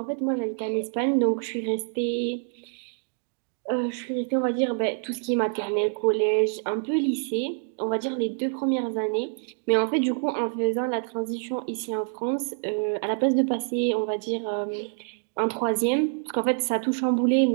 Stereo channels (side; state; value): left; silent; 61 dB below the other